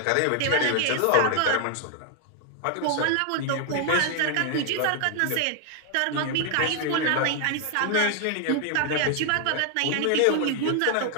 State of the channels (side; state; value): both; different; correlation 0.00